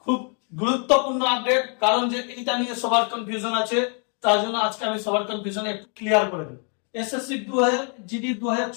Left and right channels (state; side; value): quieter; right; 39.9 dB